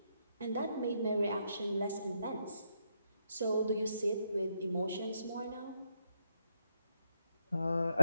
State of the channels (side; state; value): both; inverted; correlation -0.85